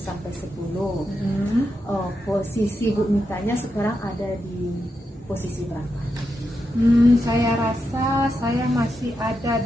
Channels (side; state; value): both; normal; correlation 0.86